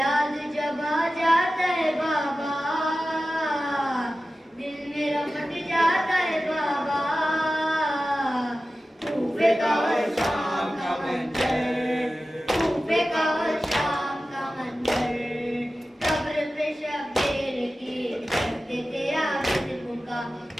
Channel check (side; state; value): both; normal; correlation 0.95